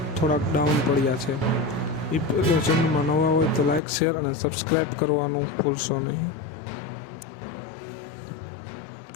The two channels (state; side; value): drops out; right; at 3.8 s